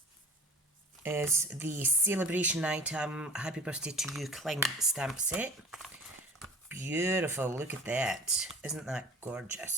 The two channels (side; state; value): both; normal; correlation 0.46